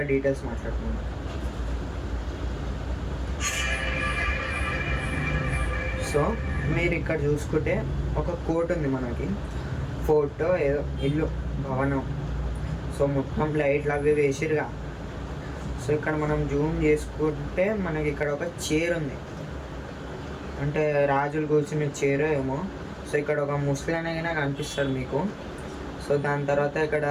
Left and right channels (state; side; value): identical; both; correlation 1.00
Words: డీటెయిల్స్ మాట్లాడుకుందాం. సో మీరు ఇక్కడ చూసుకుంటే ఒక కోట్ ఉంది మనకి, ఫోటో ఏదో ఇల్లు భవనం. సో మొత్తం లైట్లు అవి వేసిరుగా. సో ఇక్కడ మనం జూమ్ చేసుకుంటే మనకి ఇక్కడ ఒక చైర్ ఉంది, అంటే రాజులు కూర్చునే చైర్ ఏమో. సో ఇక్కడ ఒక ముస్లిం అయినా కనిపిస్తారు మీకు. సో దాని తర్వాత ఇక్కడ